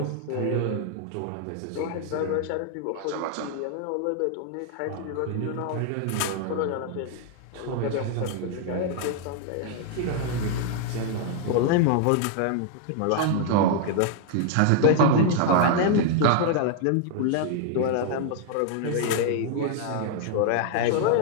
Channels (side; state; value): both; different; correlation 0.00